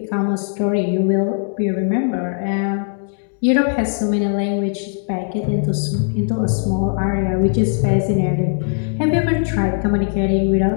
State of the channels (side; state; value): right; silent; 64 dB below the other